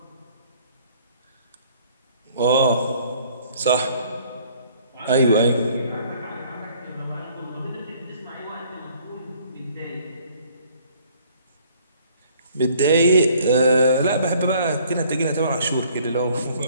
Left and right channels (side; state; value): both; inverted; correlation -0.59